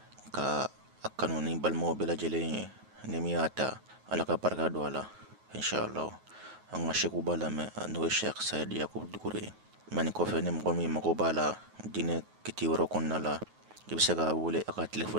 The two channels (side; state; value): left; late; 9.4 ms